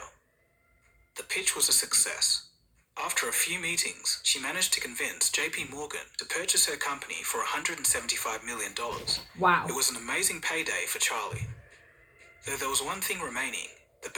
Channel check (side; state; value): both; identical; correlation 1.00